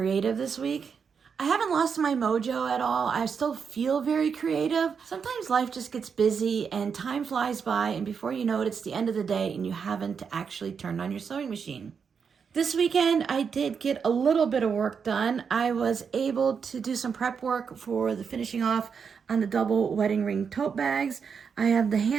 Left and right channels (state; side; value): quieter; left; 6.3 dB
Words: this week. I haven't lost my mojo at all. I still feel very creative. Sometimes life just gets busy and time flies by, and before you know it, it's the end of the day and you haven't actually turned on your sewing machine. This weekend, I did get a little bit of work done. I was able to do some prep work for the finishing off on the double wedding ring tote bags. I have the